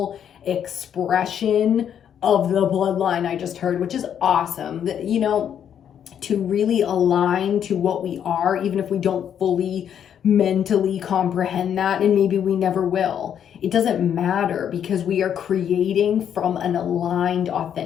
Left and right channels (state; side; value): quieter; right; 9.0 dB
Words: expression of the bloodline I just heard, which is awesome. You know, to really align to what we are, even if we don't fully mentally comprehend that, and maybe we never will. It doesn't matter, because we are creating from an aligned,